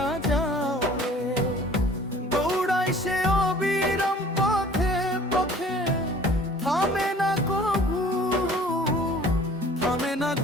যাও রে। দৌড়াই সে অবিরাম পথে পথে, থামে না কভু, থামে না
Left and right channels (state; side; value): normal; both; correlation 0.50